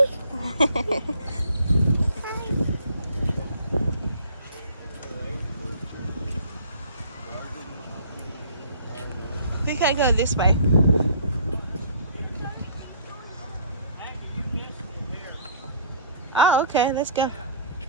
We can go this way. Oh, okay. Let's go. I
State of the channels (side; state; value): both; inverted; correlation -0.53